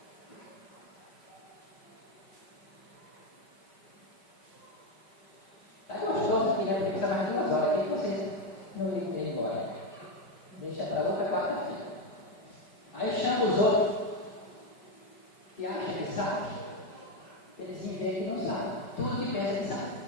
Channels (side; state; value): right; late; 5.1 ms